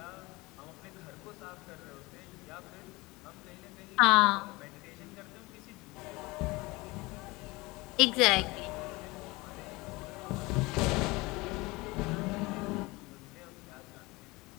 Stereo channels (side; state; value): right; quieter; 22.9 dB